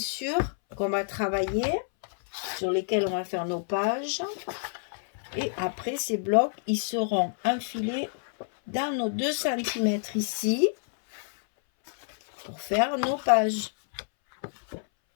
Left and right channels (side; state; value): right; silent; 59 dB below the other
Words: qu'on va travailler. Sur lesquels on va faire nos pages. Et après, ces blocs, ils seront enfilés dans nos 2 cm ici. Pour faire nos pages.